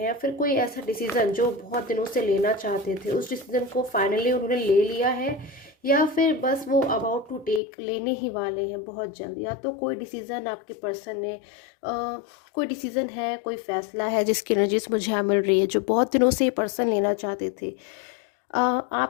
फिर कोई ऐसा डिसीजन जो बहुत दिनों से लेना चाहते थे उस डिसीजन को फाइनली उन्होंने ले लिया है, या फिर बस वो अबाउट टू टेक लेने ही वाले हैं बहुत जल्द। या तो कोई डिसीजन आपके पर्सन ने कोई डिसीजन है, कोई फैसला है जिसकी एनर्जीज मुझे यहाँ मिल रही है, जो बहुत दिनों से ये पर्सन लेना चाहते थे।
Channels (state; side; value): drops out; right; at 7.6 s